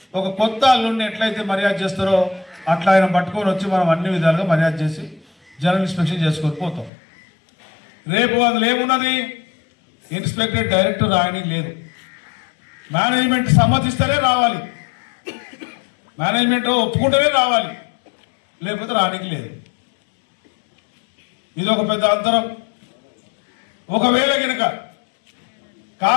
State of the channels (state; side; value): drops out; right; at 6.9 s